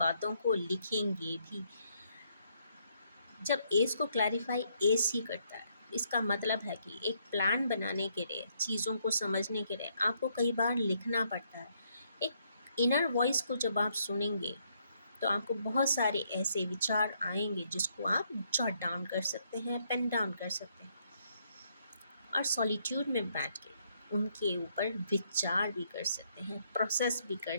को लिखेंगे भी। जब एस को क्लैरिफाई एस ही करता है, इसका मतलब है कि एक प्लान बनाने के लिए, चीज़ों को समझने के लिए आपको कई बार लिखना पड़ता है। एक इनर वॉइस को जब आप सुनेंगे तो आपको बहुत सारे ऐसे विचार आएंगे जिसको आप जॉट डाउन कर सकते हैं, पेन डाउन कर सकते हैं, और सॉलिट्यूड में बैठ के उनके ऊपर विचार भी कर सकते हैं, प्रोसेस भी कर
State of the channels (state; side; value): inverted; both; correlation -0.72